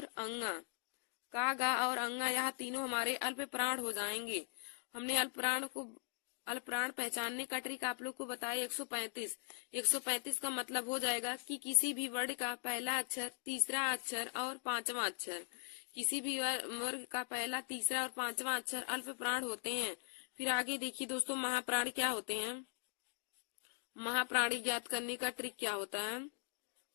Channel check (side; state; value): right; silent; digital silence